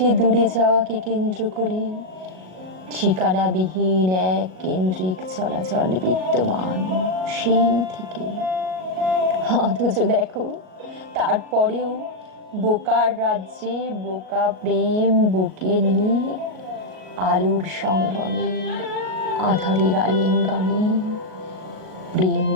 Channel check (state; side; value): late; left; 38 ms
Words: দূরে যাওয়াকে কেন্দ্র করে ঠিকানাবিহীন এক কেন্দ্রিক চলাচল বিদ্যমান সেই থেকে। অথচ দেখো তারপরেও বোকার রাজ্যে বোকা প্রেম বুকে নিয়ে আলোর সঙ্গমে আধারের আলিঙ্গনে প্রেম